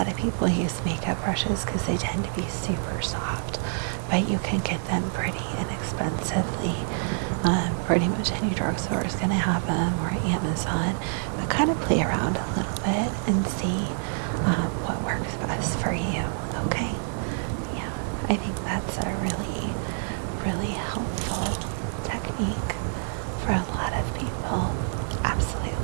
of people use makeup brushes because they tend to be super soft, but you can get them pretty inexpensively. Pretty much any drugstore is going to have them, or Amazon. But kind of play around a little bit and see what works best for you. Okay? Yeah, I think that's a really, really helpful technique for a lot of people.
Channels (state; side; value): silent; left; 60 dB below the other